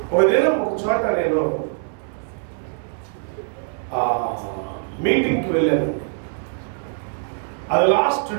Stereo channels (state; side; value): silent; left; 64 dB below the other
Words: ఒక దినం ఒక చోట నేను మీటింగ్కి వెళ్ళాను. అది లాస్ట్